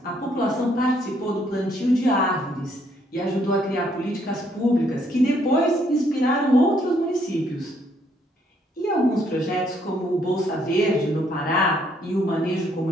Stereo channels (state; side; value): normal; both; correlation 0.69